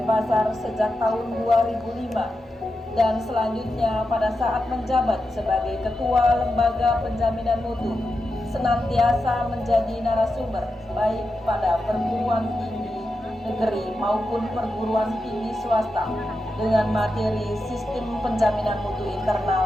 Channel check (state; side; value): normal; both; correlation 0.89